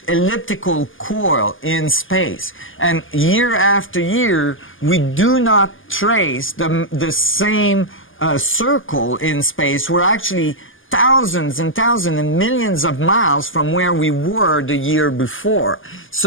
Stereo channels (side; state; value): right; late; 0.58 ms